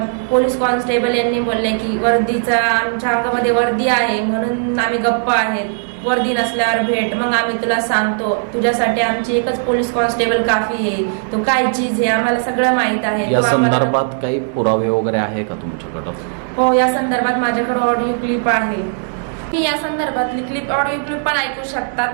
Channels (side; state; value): left; silent; digital silence